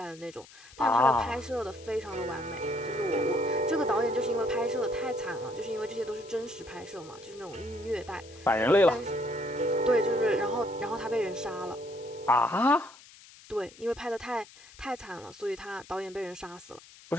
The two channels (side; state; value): left; noise; hiss, 21 dB below the sound